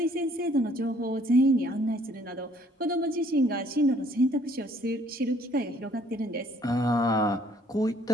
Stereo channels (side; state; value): both; normal; correlation 0.61